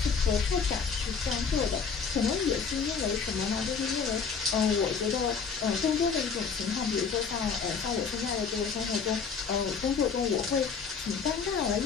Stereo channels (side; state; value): right; quieter; 5.8 dB